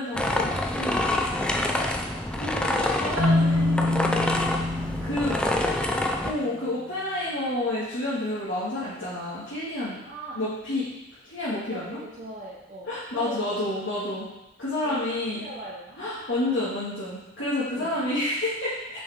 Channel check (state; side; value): normal; both; correlation 0.53